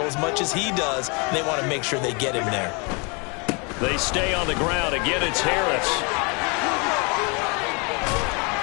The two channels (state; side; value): quieter; right; 32.2 dB